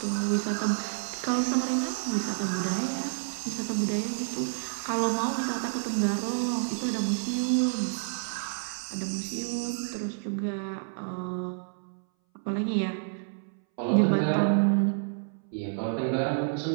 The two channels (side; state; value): left; silent; 58 dB below the other